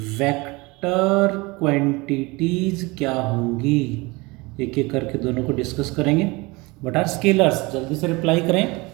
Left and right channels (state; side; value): quieter; left; 24.4 dB